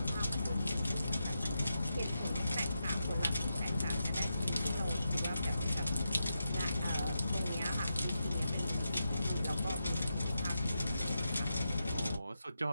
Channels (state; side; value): inverted; both; correlation -0.87